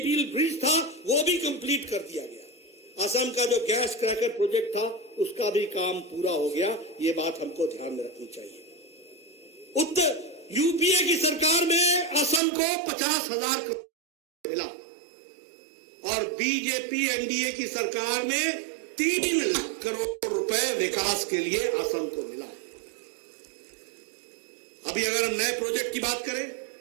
ब्रिज था वो भी कंप्लीट कर दिया गया। असम का जो गैस क्रैकर प्रोजेक्ट था उसका भी काम पूरा हो गया। ये बात हमको ध्यान में रखनी चाहिए। उत्तर यूपीए की सरकार में असम को 50,000 करोड़ मिला और बीजेपी एनडीए की सरकार में 3 लाख करोड़ रुपए विकास के लिए असम को मिला। अभी अगर हम नए प्रोजेक्ट की बात करें,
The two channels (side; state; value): left; drops out; at 12.4 s